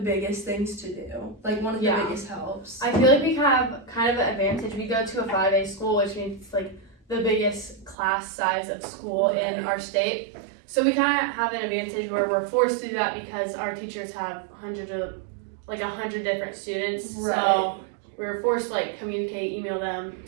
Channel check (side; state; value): left; drops out; at 8.0 s